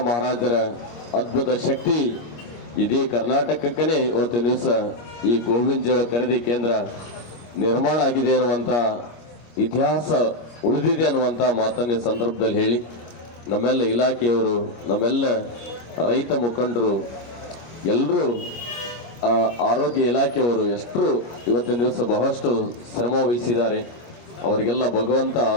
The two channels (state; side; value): late; right; 25 ms